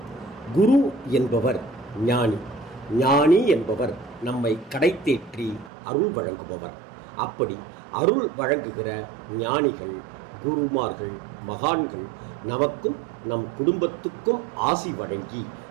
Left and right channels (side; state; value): left; drops out; at 5.7 s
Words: குரு என்பவர் ஞானி. ஞானி என்பவர் நம்மை கடைத்தேற்றி அருள் வழங்குபவர். அப்படி அருள் வழங்குகிற ஞானிகள், குருமார்கள், மகான்கள் நமக்கும் நம் குடும்பத்துக்கும் ஆசி வழங்கி